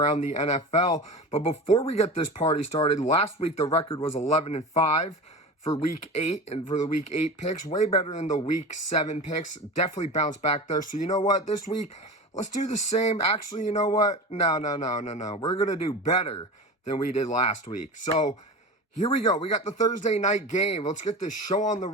the NFL. But before we get this party started, last week the record was 11-5 for Week 8, and for the Week 8 picks, way better than the Week 7 picks. Definitely bounced back there. So you know what? This week, let's do the same. Actually, you know what? No. We're going to do better than we did last week. So here we go. We got the Thursday night game. Let's get this show on the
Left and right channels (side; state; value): both; normal; correlation 0.30